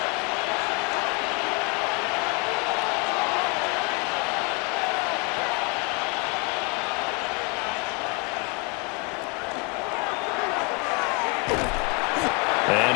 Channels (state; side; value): quieter; right; 31.9 dB